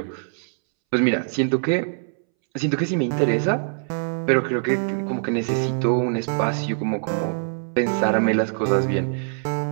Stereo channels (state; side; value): silent; left; 63 dB below the other